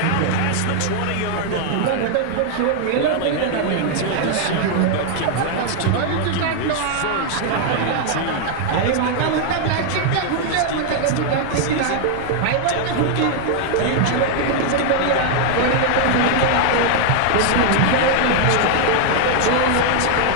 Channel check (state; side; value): different; both; correlation 0.00